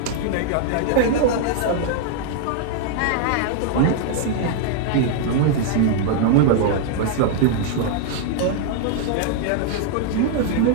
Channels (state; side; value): different; both; correlation 0.00